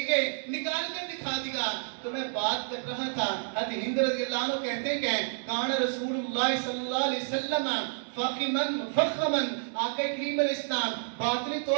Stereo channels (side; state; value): left; silent; digital silence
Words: نکال کر دکھا دیا۔ تو میں بات کر رہا تھا، حضرت ہند رضی اللہ عنہ کہتے کہ کان رسول اللہ صلی اللہ علیہ وسلم فخمن مفخمن، آقا کریم علیہ السلام باطنی